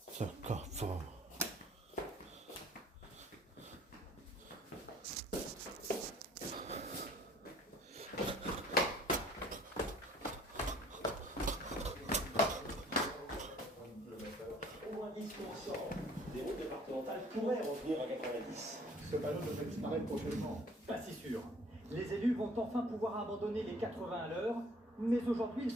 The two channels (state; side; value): normal; both; correlation 0.55